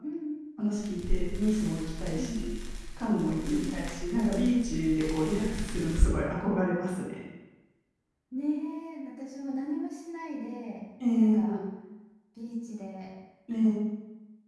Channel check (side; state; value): both; identical; correlation 1.00